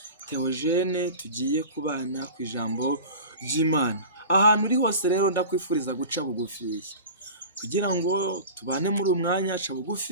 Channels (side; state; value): both; inverted; correlation -0.35